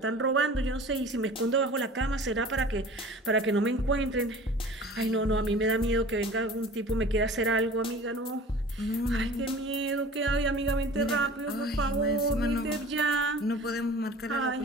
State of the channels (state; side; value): normal; both; correlation 0.42